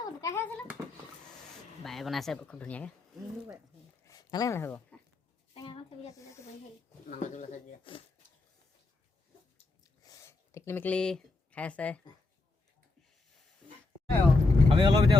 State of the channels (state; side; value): quieter; right; 3.2 dB